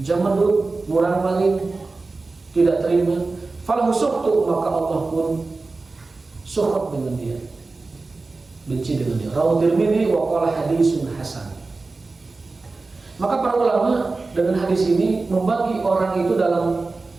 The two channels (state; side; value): quieter; left; 3.7 dB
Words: jamadud, murang maling, tidak terima, falahu sukhtu, maka Allah pun sukhut dengan dia, benci dengan dia. Rawahu Tirmidzi wa qala hadisun hasan. Maka para ulama dengan hadis ini membagi orang itu dalam